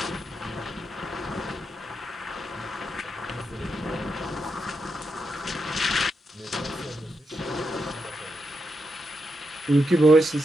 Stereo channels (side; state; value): both; normal; correlation 0.84